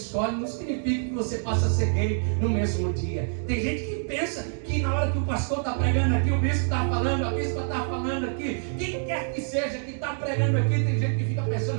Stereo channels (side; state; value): left; silent; 61 dB below the other